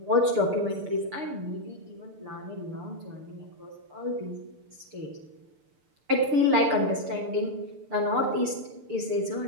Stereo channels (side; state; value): left; late; 6.7 ms